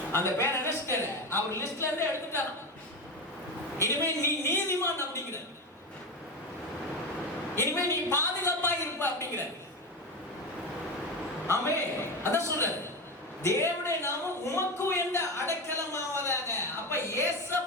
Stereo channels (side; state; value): both; normal; correlation 0.19